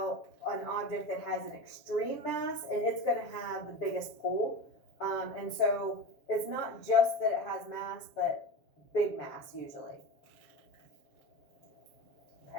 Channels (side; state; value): right; late; 7.3 ms